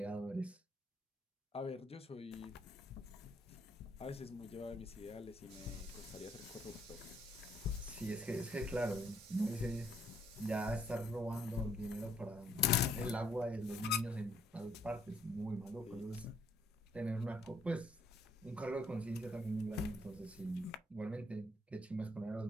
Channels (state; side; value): normal; both; correlation 0.69